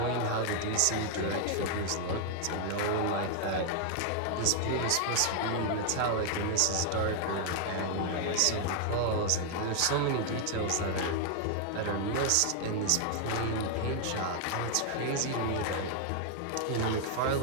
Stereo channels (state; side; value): different; both; correlation 0.00